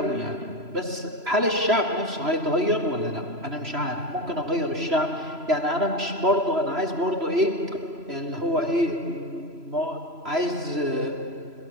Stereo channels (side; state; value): left; late; 3.0 ms